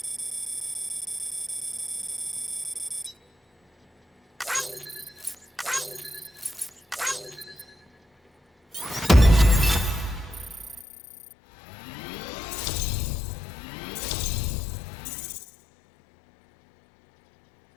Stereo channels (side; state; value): right; drops out; at 10.9 s